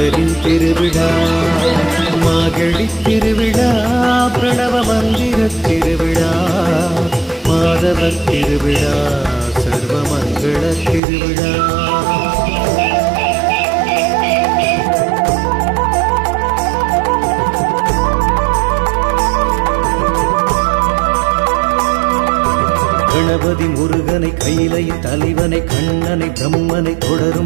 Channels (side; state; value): left; drops out; at 11.0 s